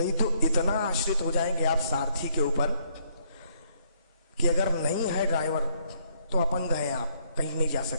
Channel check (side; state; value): both; inverted; correlation -0.68